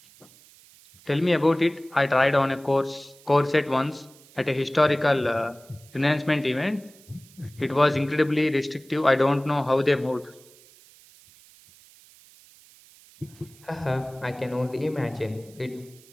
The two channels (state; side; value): noise; right; hiss, 25 dB below the sound